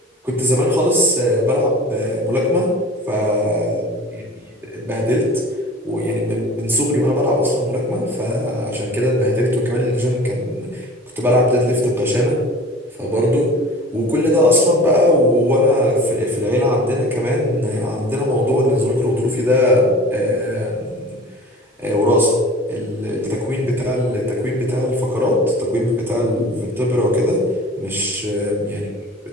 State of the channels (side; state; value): both; normal; correlation 0.40